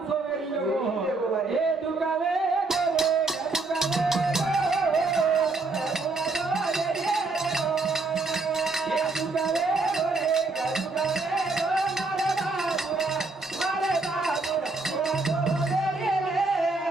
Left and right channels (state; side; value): quieter; left; 3.5 dB